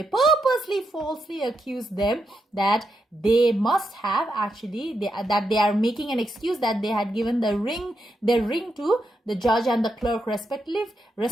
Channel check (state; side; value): normal; both; correlation 0.83